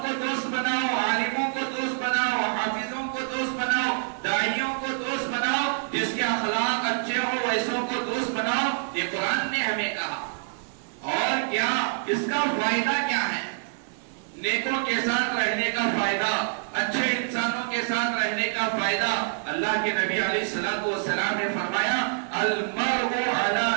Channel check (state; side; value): silent; left; 61 dB below the other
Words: دوست بناؤ، عالموں کو دوست بناؤ، حافظوں کو دوست بناؤ، داعیوں کو دوست بناؤ، جس کے اخلاق اچھے ہو ویسوں کو دوست بناؤ. یہ قرآن نے ہمیں کہا. اور کیا اس کا فائدہ کیا ہے؟ نیکوں کے ساتھ رہنے کا فائدہ، اچھے انسانوں کے ساتھ رہنے کا فائدہ. اللہ کے نبی علیہ الصلوۃ والسلام نے فرمایا المرء علی